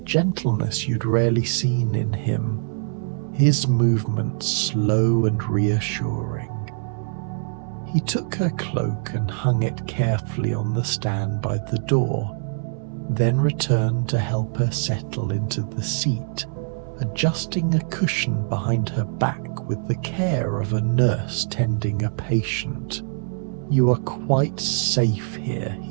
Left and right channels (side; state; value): left; silent; 63 dB below the other